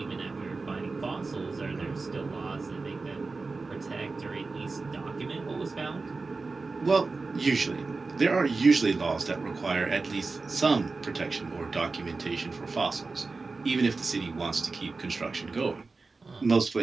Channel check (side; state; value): left; quieter; 3.9 dB